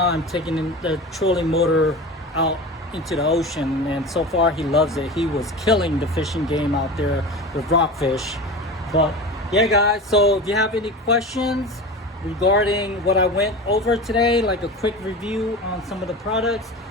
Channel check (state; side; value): normal; both; correlation 0.31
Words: taking the trolling motor out into the ocean, and so far he loves it. He was killing the fishing game out there with rockfish. But yeah guys, so if you have any questions regarding what I went over today, like a quick review on some of the products,